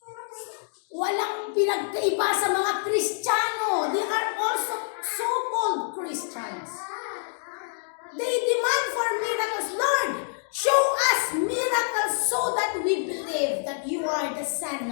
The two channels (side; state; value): right; silent; digital silence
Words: Walang pinagkaiba sa mga Kristiyano. They are also so-called Christians. They demand for miracles. Lord, show us miracles so that we believe that you are the Son